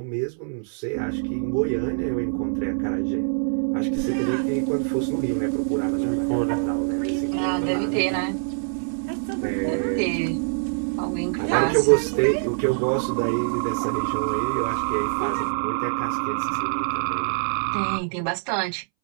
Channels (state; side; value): silent; left; 62 dB below the other